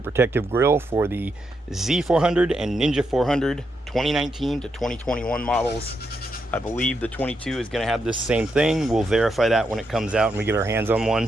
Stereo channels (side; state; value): both; normal; correlation 0.82